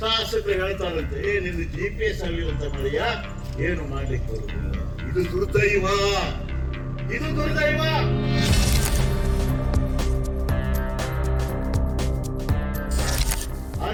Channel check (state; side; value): identical; both; correlation 1.00